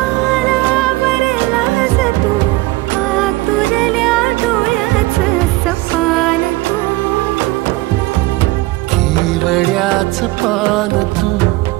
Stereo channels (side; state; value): left; quieter; 20.0 dB